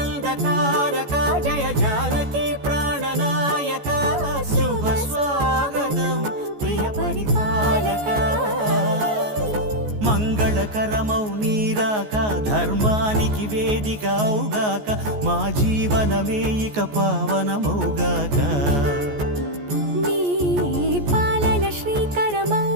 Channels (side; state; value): left; late; 14 ms